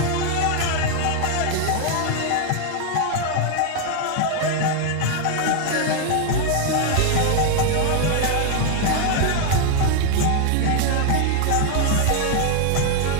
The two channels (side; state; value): both; different; correlation 0.00